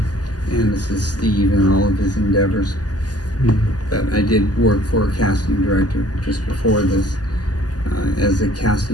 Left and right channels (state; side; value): late; right; 0.68 ms